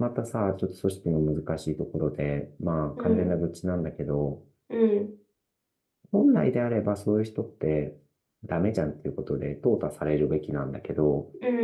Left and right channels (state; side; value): identical; both; correlation 1.00